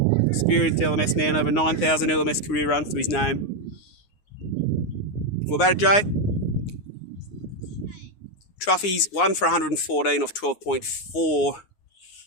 Experienced LMS man, over 9,000 LMS career runs to his name. What about it, Jay? Truffy's 1 for 114 off 12.4.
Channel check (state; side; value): late; right; 9.7 ms